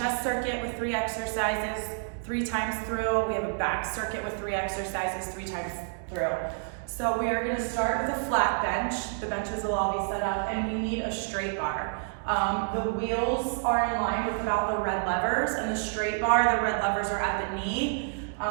circuit with 3 exercises 3 times through. We have a back circuit with 3 exercises 3 times through. So we are gonna start with a flat bench. The benches will all be set up and we need a straight bar. The wheels are in line with about the red levers, and the straight bar, the red levers are at the knee.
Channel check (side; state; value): left; silent; digital silence